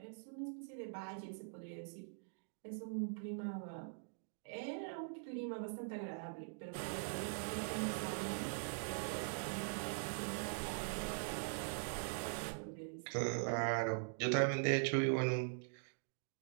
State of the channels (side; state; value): left; silent; digital silence